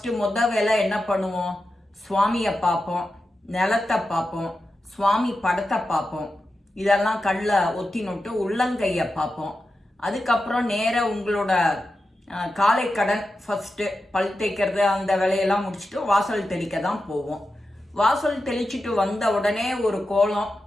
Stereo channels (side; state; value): both; normal; correlation 0.91